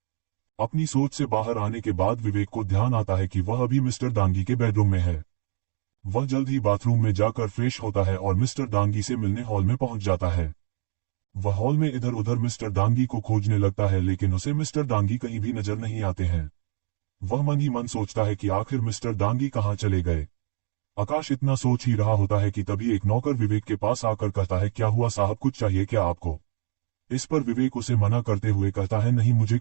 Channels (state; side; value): silent; left; 62 dB below the other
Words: अपनी सोच से बाहर आने के बाद विवेक को ध्यान आता है कि वह अभी मिस्टर दांगी के बेडरूम में है। वह जल्द ही बाथरूम में जाकर फ्रेश होता है और मिस्टर दांगी से मिलने हॉल में पहुंच जाता है। वह हॉल में इधर उधर मिस्टर दांगी को खोजने लगता है, लेकिन उसे मिस्टर दांगी कहीं भी नजर नहीं आते हैं। वह मन ही मन सोचता है कि आखिर मिस्टर दांगी कहाँ चले गए। आकाश इतना सोच ही रहा होता है कि तभी एक नौकर विवेक के पास आकर कहता है, क्या हुआ साहब, कुछ चाहिए क्या आपको? इस पर विवेक उसे मना करते हुए कहता है, नहीं मुझे